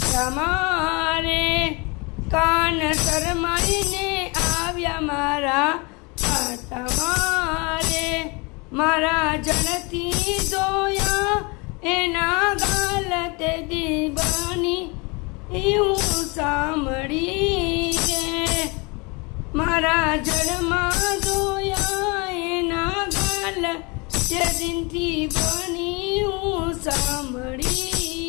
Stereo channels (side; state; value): right; quieter; 28.7 dB